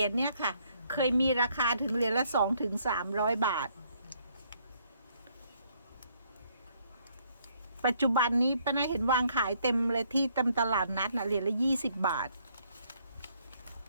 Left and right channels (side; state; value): both; inverted; correlation -0.68